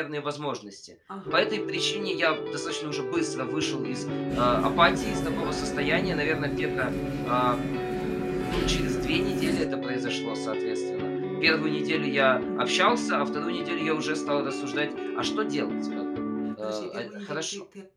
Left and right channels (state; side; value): identical; both; correlation 1.00